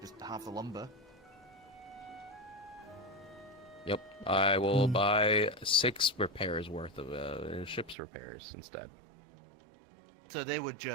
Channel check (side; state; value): left; drops out; at 8.0 s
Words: just half the lumber. Yep. I will buy 6 repairs worth of ship's repairs instead. So they would